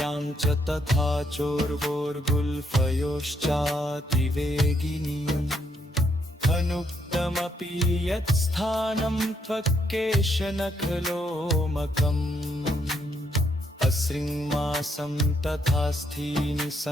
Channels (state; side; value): normal; both; correlation 0.75